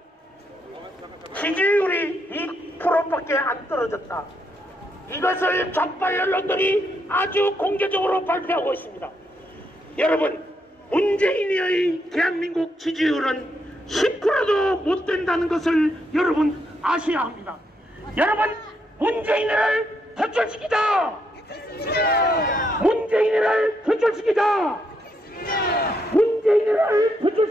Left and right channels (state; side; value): normal; both; correlation 0.78